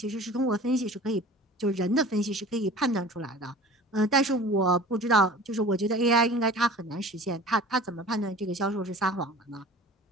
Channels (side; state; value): both; normal; correlation 0.42